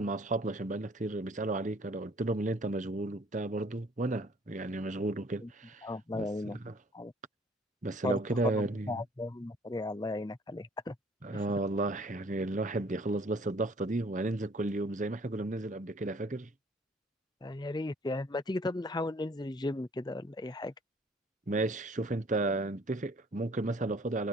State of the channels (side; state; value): both; normal; correlation 0.57